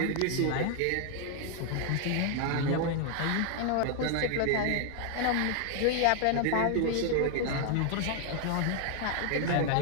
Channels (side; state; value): both; different; correlation 0.00